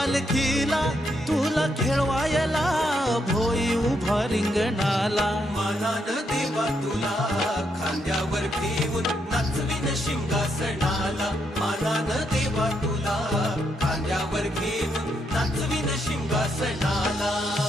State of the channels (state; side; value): normal; both; correlation 0.78